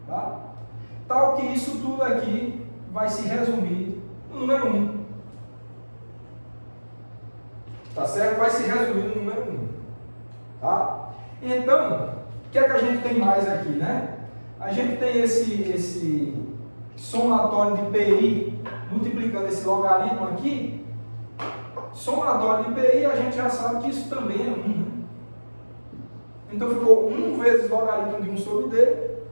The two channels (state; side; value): inverted; both; correlation -1.00